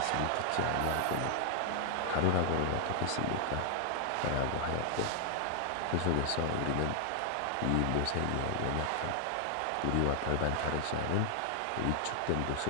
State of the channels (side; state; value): both; different; correlation 0.00